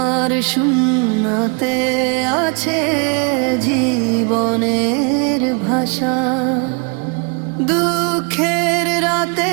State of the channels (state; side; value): quieter; left; 34.9 dB